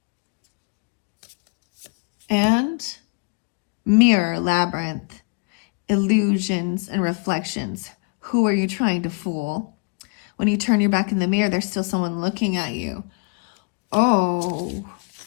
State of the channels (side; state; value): right; quieter; 32.8 dB